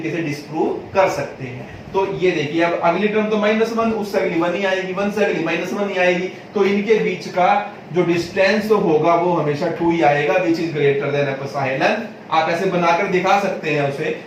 से डिस्प्रूव कर सकते हैं। तो ये देखिए, अब अगली टर्म तो -1, उससे अगली 1 ही आएगी, 1 से अगली -1 ही आएगी, तो इनके बीच का जो डिस्टेंस होगा वो हमेशा 2 ही आएगा, which is greater then epsilon. आप ऐसे बनाकर दिखा सकते हैं उसे,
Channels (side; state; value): both; identical; correlation 1.00